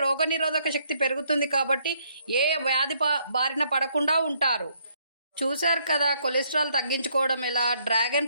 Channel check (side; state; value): both; inverted; correlation -0.69